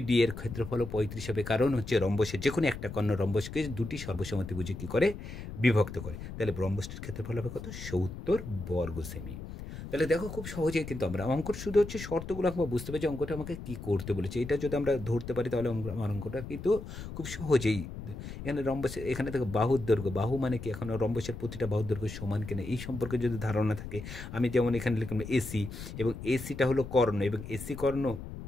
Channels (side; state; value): left; noise; rumble, 10 dB below the sound